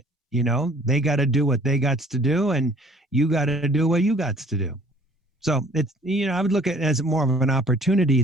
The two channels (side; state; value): both; normal; correlation 0.55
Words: They got to do what they got to do, and you got to do what you got to do. So it's, I would look at it as more of an opportunity